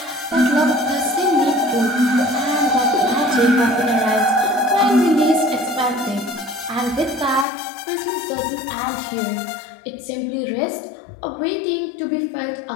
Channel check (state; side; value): drops out; right; at 7.5 s